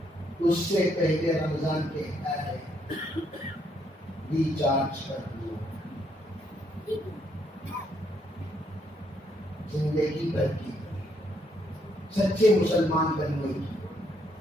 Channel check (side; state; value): both; normal; correlation 0.72